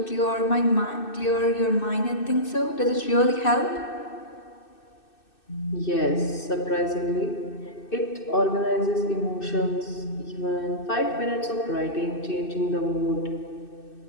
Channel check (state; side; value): late; right; 2.6 ms